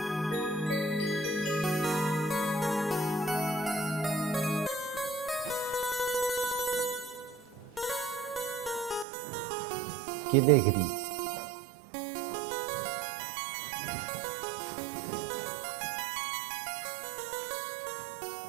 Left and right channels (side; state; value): left; drops out; at 9.1 s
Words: क्या देख रही?